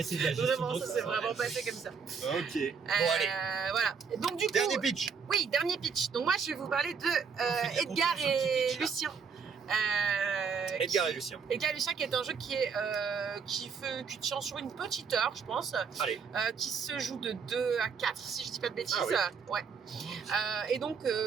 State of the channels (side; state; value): left; quieter; 5.9 dB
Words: c'est de la gestion Vraiment, de ça ça. s'est vraiment passé comme ça. ok. Bon, allez, Voilà. Et donc, du coup, dernier pitch. oui, dernier pitch. Donc, moi, je vais vous parler de fait de la Edgar confiance au petit et pitch, là. Lucien. Edgar et Lucien. Edgar et Lucien, qui est un jeu qui tient sur une petite heure, je pense. Allez. Qui se joue de 2 à 4, si je dis pas de bêtises. Ah oui. Ouais. Et donc,